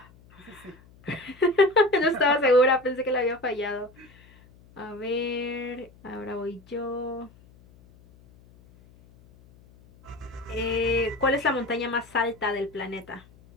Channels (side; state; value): left; noise; hum, 26 dB below the sound